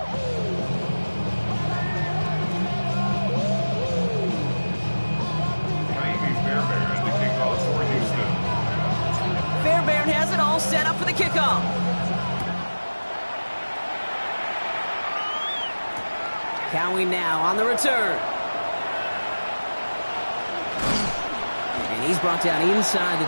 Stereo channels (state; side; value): inverted; both; correlation -1.00